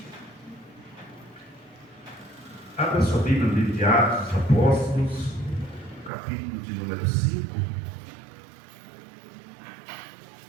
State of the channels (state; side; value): drops out; left; at 6.1 s